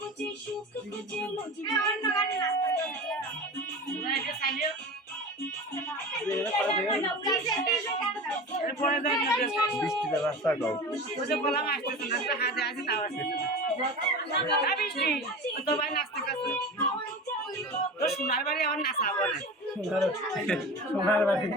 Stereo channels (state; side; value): normal; both; correlation 0.32